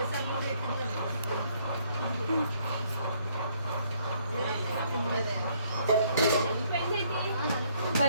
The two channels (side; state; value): both; inverted; correlation -0.67